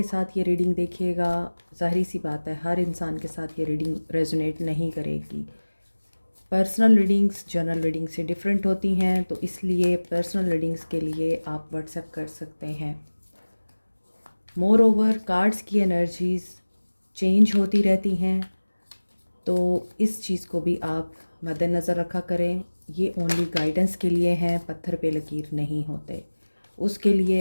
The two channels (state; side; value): inverted; both; correlation -1.00